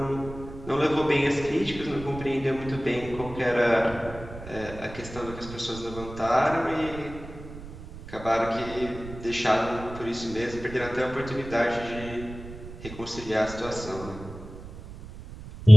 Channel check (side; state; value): right; noise; rumble, 13 dB below the sound